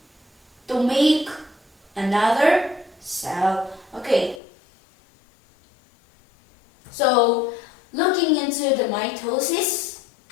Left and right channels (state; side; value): drops out; right; at 4.4 s